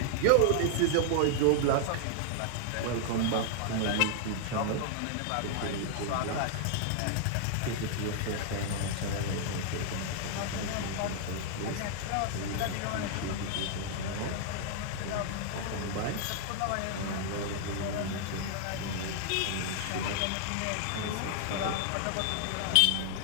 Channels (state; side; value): different; both; correlation 0.00